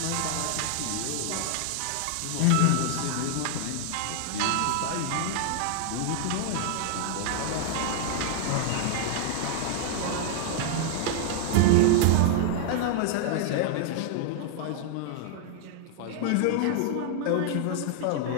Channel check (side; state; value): both; different; correlation -0.01